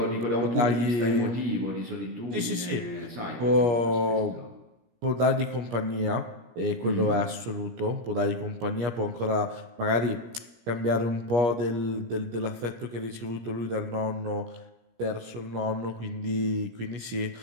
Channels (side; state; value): left; late; 17 ms